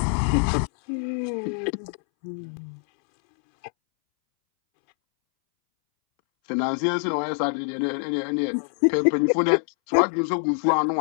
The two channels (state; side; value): silent; right; 62 dB below the other